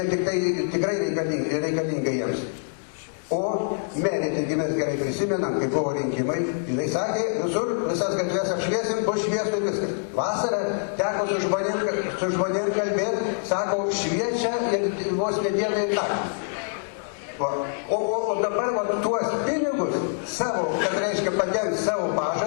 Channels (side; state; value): right; silent; digital silence